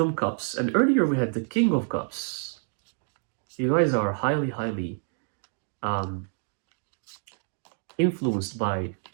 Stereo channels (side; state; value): left; silent; 56 dB below the other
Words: cups. And earlier we had the King of Cups. You guys are highly influenced by